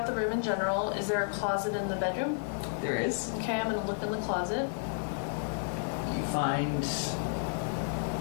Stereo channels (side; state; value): right; silent; digital silence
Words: the room in general. Is there a closet in the bedroom? There is. Okay, I'm gonna look in the closet. You find